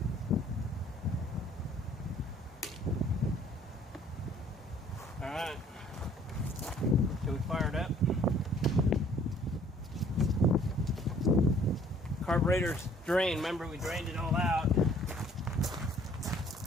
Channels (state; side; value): normal; both; correlation 0.57